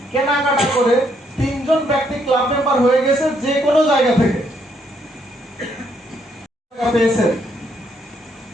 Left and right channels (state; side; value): normal; both; correlation 0.72